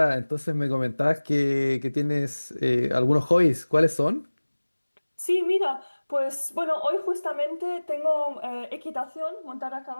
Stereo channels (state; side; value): inverted; both; correlation -1.00